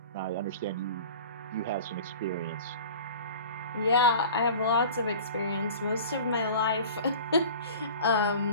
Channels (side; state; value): both; inverted; correlation -0.40